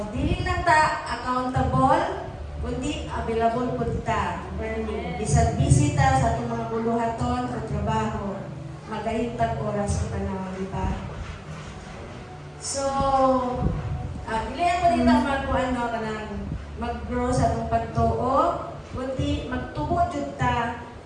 Dili lang ta accountable, kundi available po ta. Bisag bisita sa atong mga buluhaton sa trabaho, magahintag oras sa panahon, di ba? So, dili ako dito mag-grow sa atong pagtuo, kundi magtubo jud ta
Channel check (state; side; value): identical; both; correlation 1.00